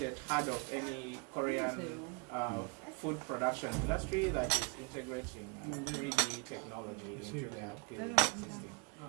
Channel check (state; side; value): quieter; left; 32.1 dB